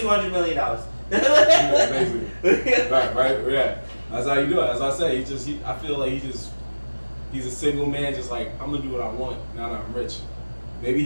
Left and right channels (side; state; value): both; inverted; correlation -1.00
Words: million. right, yeah. That's how you do it. As I say, I feel like he's a single man, just like I'm gonna do what I want now that I'm rich. Maybe